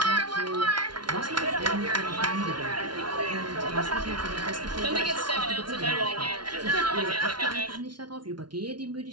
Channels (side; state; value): left; late; 0.71 ms